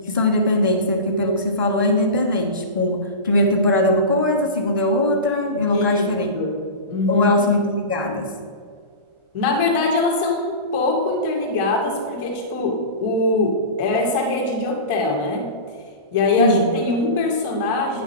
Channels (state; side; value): late; left; 1.4 ms